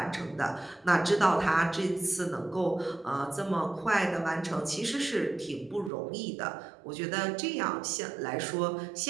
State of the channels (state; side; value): drops out; left; at 5.9 s